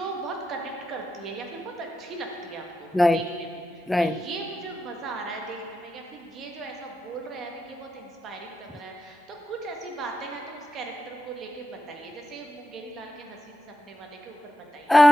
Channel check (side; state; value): both; normal; correlation 0.86